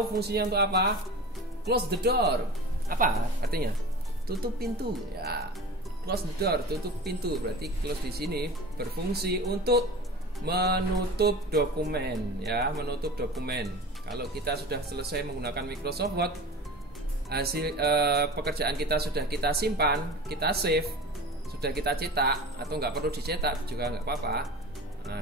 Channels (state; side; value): normal; both; correlation 0.34